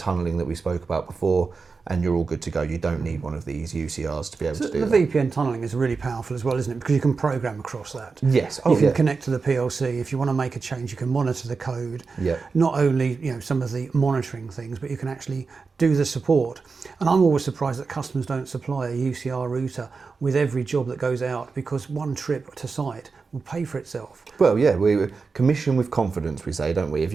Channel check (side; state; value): left; quieter; 4.6 dB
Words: that we spoke about before, and you're all good to go. You don't need one of these UCRs to be able to do the that. VPN tunneling is really powerful as well, isn't it? Because you can program across that. Yes. You can connect to the PLC. If you want to make a change, you can monitor the code. Yeah. Not only, you know, some of the monitoring things, but you can actually do the support. And I'm always surprised that customers don't supply a UCR router with every job that goes out, because one trip to site will pay for itself. Well, yeah, we commission with confidence, we say, don't we? If